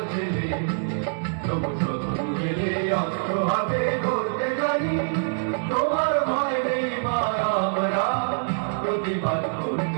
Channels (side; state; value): left; silent; 62 dB below the other